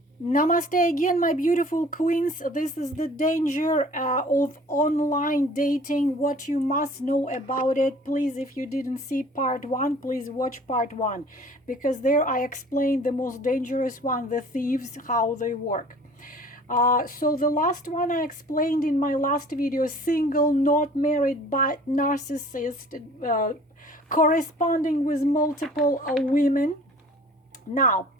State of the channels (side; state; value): both; normal; correlation 0.49